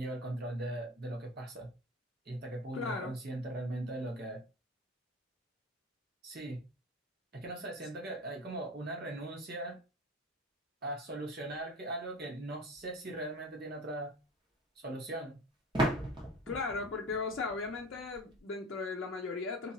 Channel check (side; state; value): both; normal; correlation 0.35